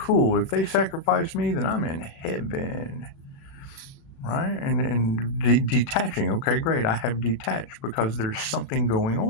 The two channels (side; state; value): right; late; 37 ms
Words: If they sacrifice me, then I'm in heaven. Right? And detaching. Okay, great. I have detached because there's something going